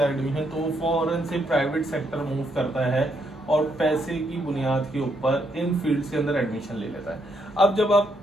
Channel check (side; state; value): both; normal; correlation 0.76